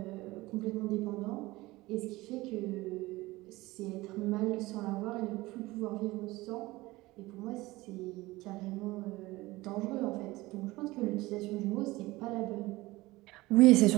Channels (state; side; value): quieter; left; 19.8 dB